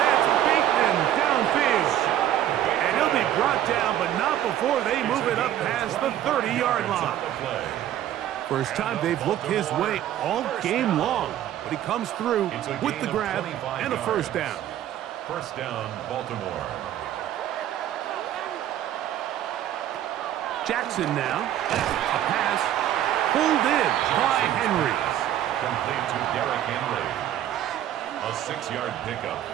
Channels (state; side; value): quieter; left; 11.8 dB